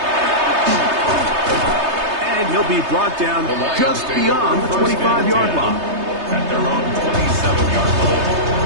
And he'll be brought down just beyond the 25-yard line. At their own 27-yard line.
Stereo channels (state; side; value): late; left; 3.3 ms